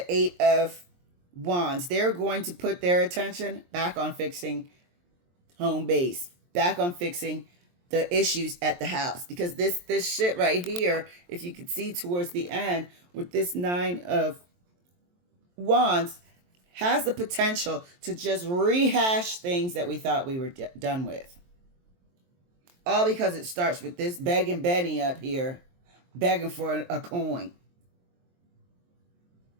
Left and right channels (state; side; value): late; left; 23 ms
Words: 8 of Wands, they're going to put their attention back on fixing home base, back on fixing the issues at the house. Because this shit right here, if you could see towards the end, with this 9 of Wands, has the potential to just rehash things that we thought we were done with. All because it starts with this begging Benny up here, begging for a coin.